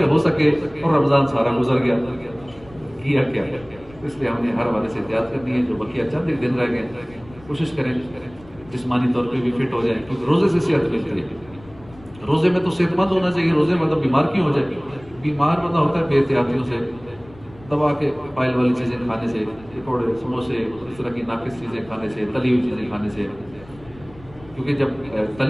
ہو سکے، اور رمضان سارا گزر گیا. کیا کیا؟ اس لیے ہم نے ہر حوالے سے احتیاط کرنی ہے. جو بقیہ چند ایک دن رہ گئے کوشش کریں جسمانی طور پہ بھی فٹ ہو جائے، کیونکہ روزے سے صحت ملتی ہے. روزے میں تو صحت مند ہونا چاہیے. روزے مطلب بیمار کیوں ہو جائے؟ بیمار بندہ ہوتا ہے بے احتیاطیوں سے، دبا کے آئل والی چیزیں کھانے سے، پکوڑے سموسے اس طرح کی ناقص چیزیں کھانے سے، تلی ہوئی چیزیں کھانے سے. کیونکہ جب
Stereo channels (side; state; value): left; noise; rumble, 22 dB below the sound